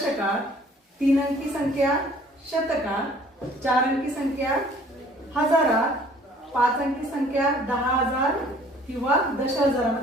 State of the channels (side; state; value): both; normal; correlation 0.54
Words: तीन अंकी संख्या शतकात, चार अंकी संख्या हजारात, पाच अंकी संख्या 10,000 किंवा